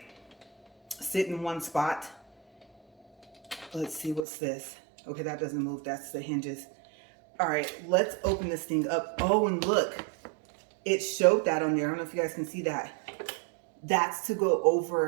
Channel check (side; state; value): left; drops out; at 4.2 s